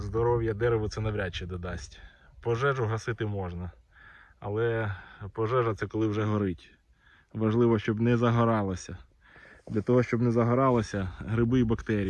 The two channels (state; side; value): identical; both; correlation 1.00